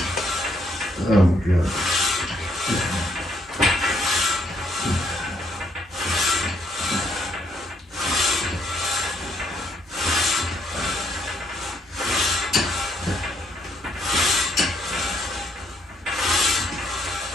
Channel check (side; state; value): both; normal; correlation 0.71